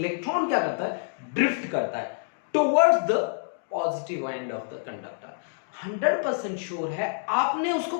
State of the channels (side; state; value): right; silent; digital silence